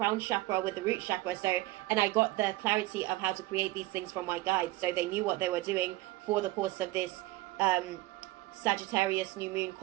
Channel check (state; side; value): quieter; left; 18.7 dB